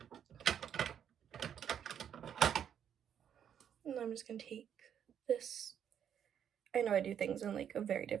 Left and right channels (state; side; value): quieter; left; 8.9 dB